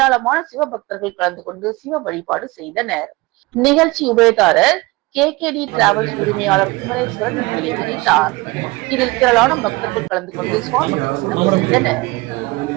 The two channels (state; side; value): quieter; left; 23.2 dB